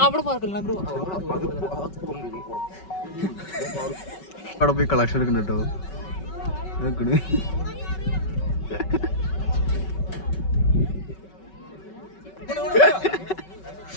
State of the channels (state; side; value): late; right; 5.3 ms